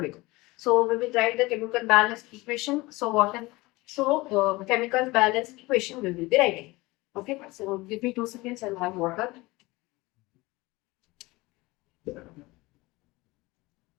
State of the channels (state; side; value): quieter; right; 21.8 dB